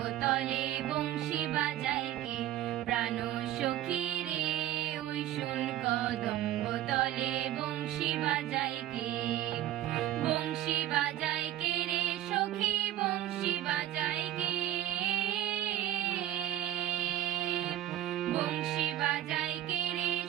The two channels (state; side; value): quieter; left; 12.8 dB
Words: তলে বংশী বাজায় কে। প্রাণ সখী রে ওই শুন কদম্ব তলে বংশী বাজায় কে। বংশী বাজায় কে রে সখী বংশী বাজায় কে। বংশী বাজায় কে রে